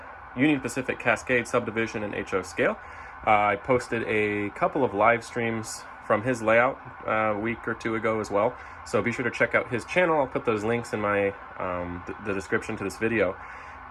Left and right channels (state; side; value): identical; both; correlation 1.00